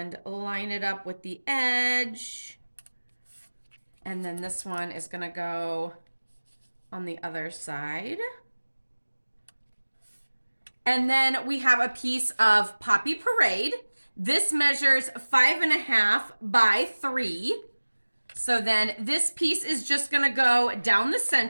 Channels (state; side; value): inverted; both; correlation -1.00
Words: line it up with the edge. And then this one is gonna go on the other side. And then we have a piece of Poppy Parade. This measures 5.5 by 3. So then this piece is just gonna go down the